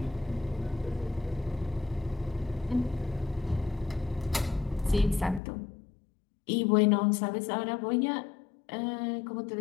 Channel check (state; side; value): drops out; right; at 5.4 s